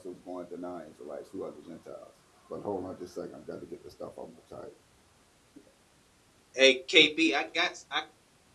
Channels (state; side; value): identical; both; correlation 1.00